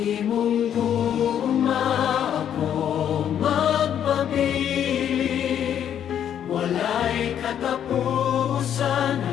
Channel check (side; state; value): right; quieter; 9.5 dB